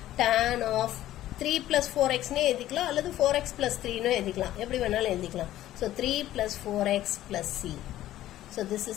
tan of 3 plus 4xனே எழுதிக்கலாம், அல்லது 4x plus 3னு எழுதிக்கலாம், எப்படி வேணாலும் எழுதிக்கலாம். So 3 plus 4x plus c. So this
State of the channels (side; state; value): right; quieter; 13.8 dB